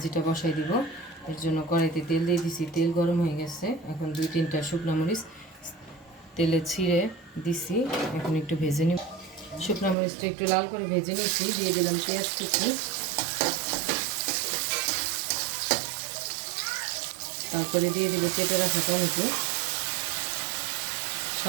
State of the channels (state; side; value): drops out; left; at 10.0 s